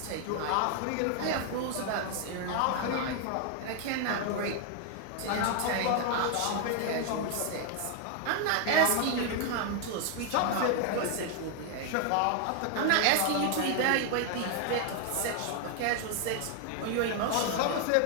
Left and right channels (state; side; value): different; both; correlation 0.00